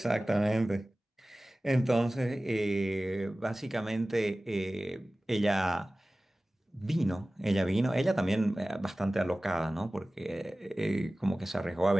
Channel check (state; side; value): normal; both; correlation 0.97